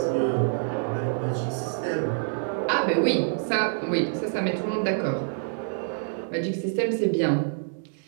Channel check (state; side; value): silent; left; 61 dB below the other